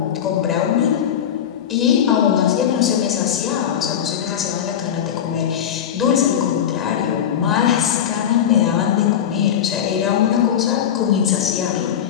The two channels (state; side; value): quieter; right; 9.3 dB